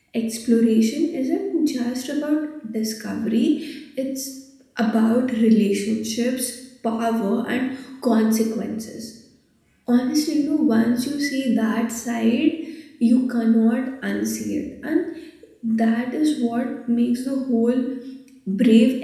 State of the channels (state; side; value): identical; both; correlation 1.00